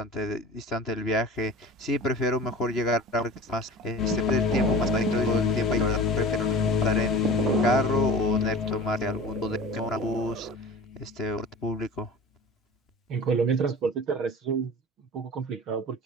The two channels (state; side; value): normal; both; correlation 0.38